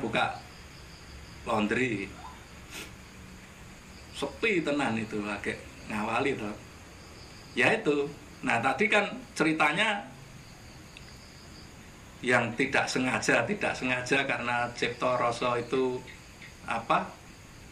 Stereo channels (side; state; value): both; identical; correlation 1.00